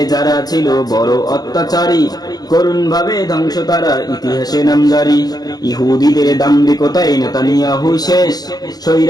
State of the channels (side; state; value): right; late; 0.19 ms